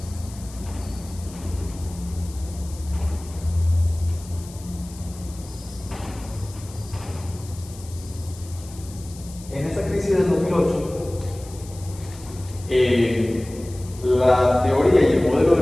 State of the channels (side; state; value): left; noise; hiss, 19 dB below the sound